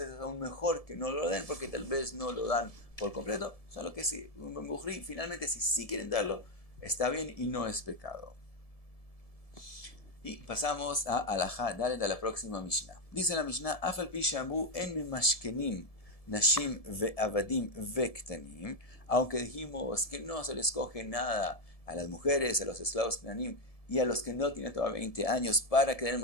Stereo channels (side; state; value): right; late; 1.7 ms